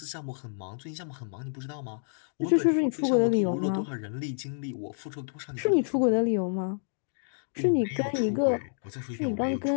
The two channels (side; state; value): right; silent; digital silence